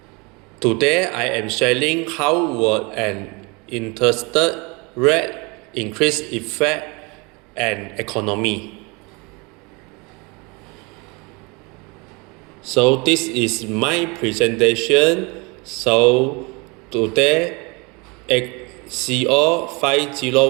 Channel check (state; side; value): quieter; left; 28.3 dB